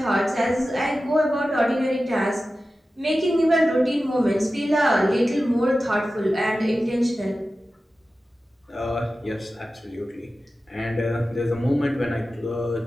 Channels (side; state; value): both; normal; correlation 0.94